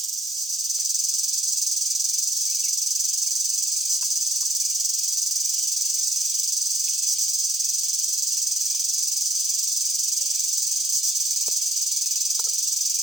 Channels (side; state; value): both; normal; correlation 0.70